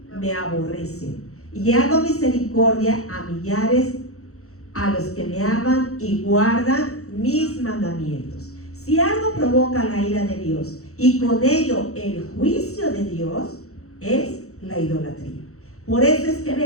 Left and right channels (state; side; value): late; right; 0.64 ms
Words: me aborrecen. Y hago misericordia a millares, a los que me aman y guardan mis mandamientos. Si algo provoca la ira de Dios y con ello el juicio de Dios, es la idolatría. Por eso es que